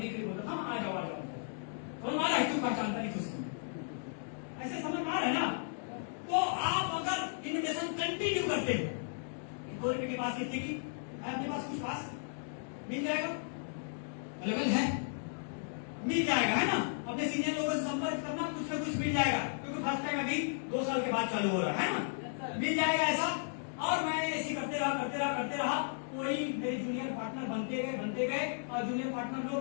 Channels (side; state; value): right; silent; digital silence